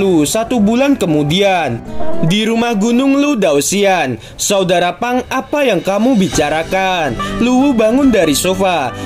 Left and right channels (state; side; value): identical; both; correlation 1.00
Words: 1 bulan kemudian. Di rumah Gunung Lu Daoxian, "Saudara Pang, apa yang kamu bicarakan?" Lu Wu bangun dari sofa